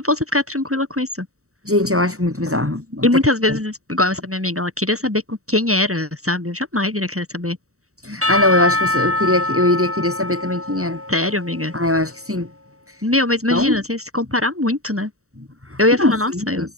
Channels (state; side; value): late; left; 0.64 ms